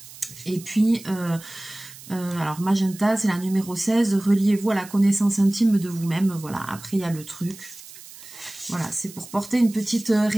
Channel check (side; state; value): right; noise; hiss, 17 dB below the sound